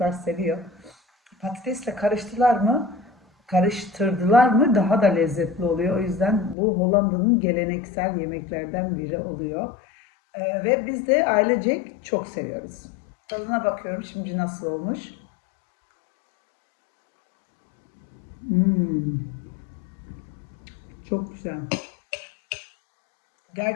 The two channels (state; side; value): drops out; right; at 6.6 s